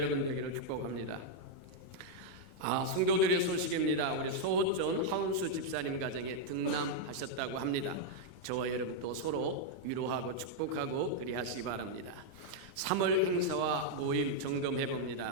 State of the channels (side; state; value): left; late; 29 ms